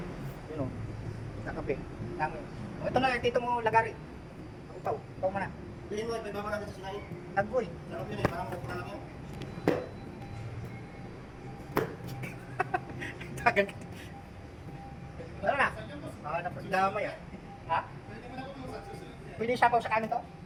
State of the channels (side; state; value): both; identical; correlation 1.00